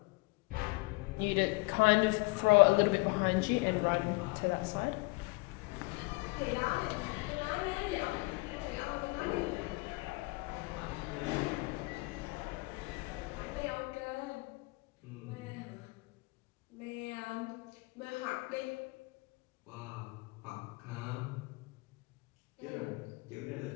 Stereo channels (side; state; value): right; quieter; 26.1 dB